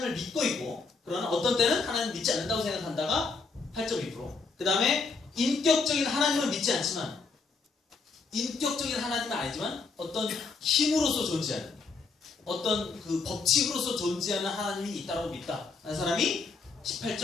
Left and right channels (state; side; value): quieter; right; 4.4 dB